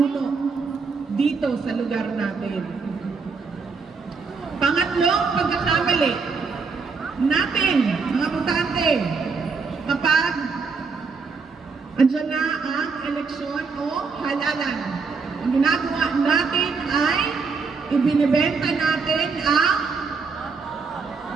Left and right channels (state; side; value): quieter; left; 4.8 dB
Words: dito sa lugar natin. Pangatlong pagkakamali natin, mga butante, Andiyan na ang eleksyon o halalan. Ang ginagawa natin ay ibinibenta natin ang